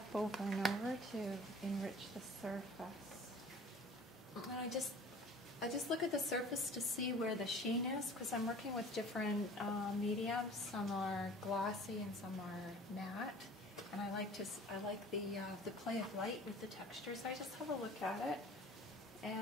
over and over to enrich the surface. And I just look at the surface to see where the sheen is, because I'm working with different mediums. Some are glossy and some are matte. And I like the play of light with the texture. So I just have a look at it,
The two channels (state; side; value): normal; both; correlation 0.46